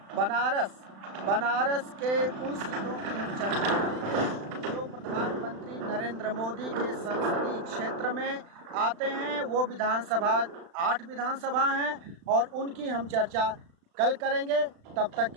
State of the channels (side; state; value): left; late; 35 ms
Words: बनारस के उन सीटों की हम चर्चा करेंगे जो प्रधानमंत्री नरेंद्र मोदी के संसदीय क्षेत्र में आते हैं। वो विधानसभा 8 विधानसभा हैं और उनकी हम चर्चा कल करेंगे। तब तक